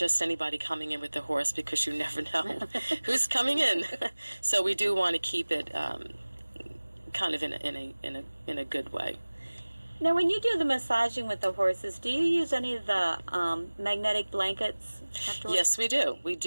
anybody coming in with the horse, because you never know who's coming in. So we do want to keep it kind of in a good way. Now, when you do the massaging with the horses, do you use any of the magnetic blankets afterwards? Yes, we do. We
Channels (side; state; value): both; inverted; correlation -1.00